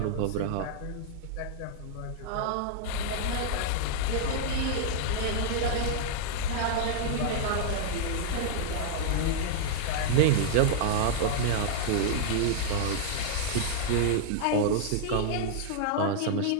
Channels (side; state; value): both; different; correlation -0.02